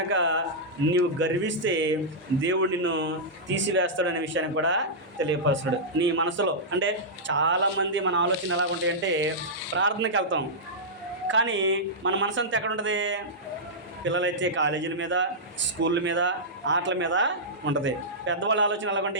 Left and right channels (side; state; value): both; normal; correlation -0.11